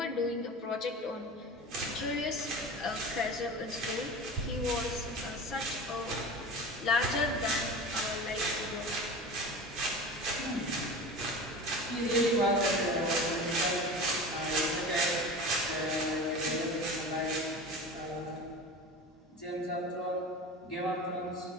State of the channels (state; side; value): normal; both; correlation 0.33